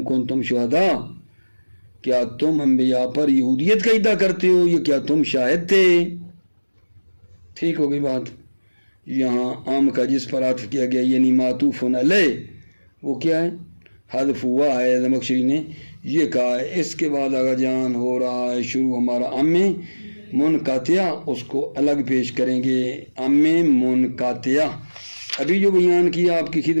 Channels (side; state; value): both; inverted; correlation -1.00